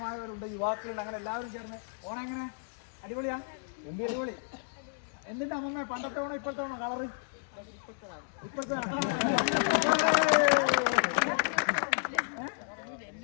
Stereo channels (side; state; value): right; silent; digital silence